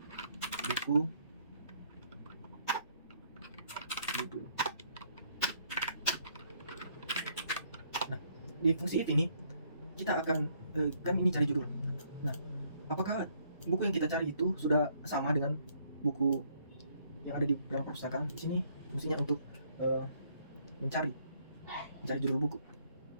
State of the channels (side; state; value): both; inverted; correlation -0.67